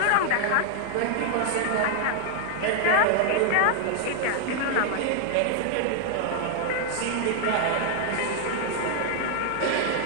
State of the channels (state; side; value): different; both; correlation 0.00